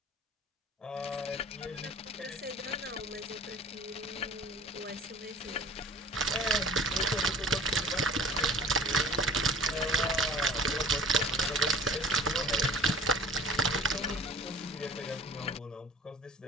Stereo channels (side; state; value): both; normal; correlation 0.46